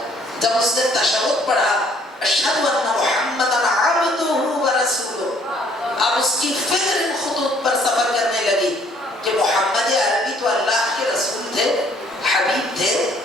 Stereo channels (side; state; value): both; normal; correlation 0.61